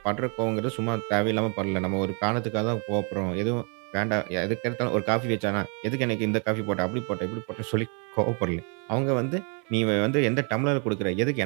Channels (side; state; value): left; quieter; 38.1 dB